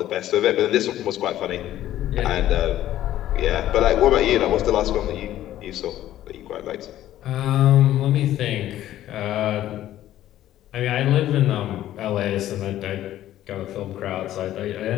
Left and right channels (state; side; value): quieter; right; 13.2 dB